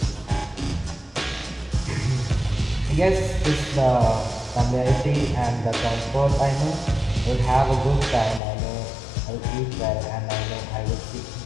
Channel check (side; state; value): right; drops out; at 8.4 s